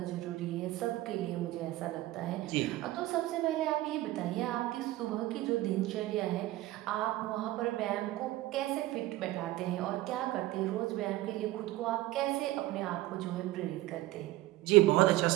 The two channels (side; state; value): left; quieter; 16.9 dB